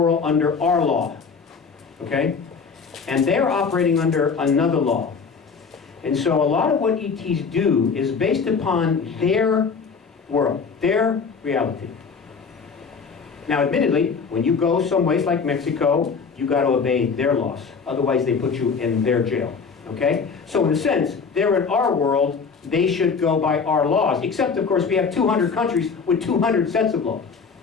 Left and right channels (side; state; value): right; quieter; 5.4 dB